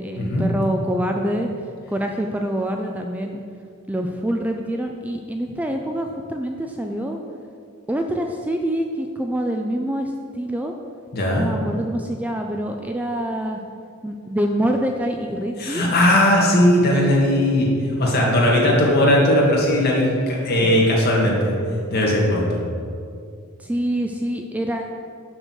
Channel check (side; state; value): both; normal; correlation 0.49